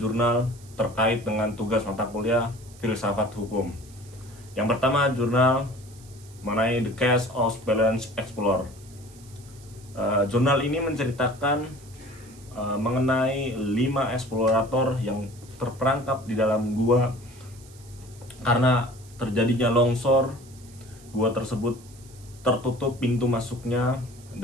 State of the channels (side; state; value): right; noise; hiss, 24 dB below the sound